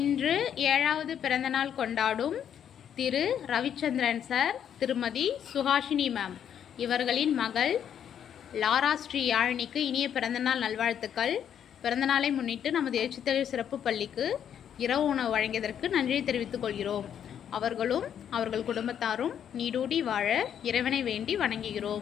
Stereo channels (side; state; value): right; quieter; 9.1 dB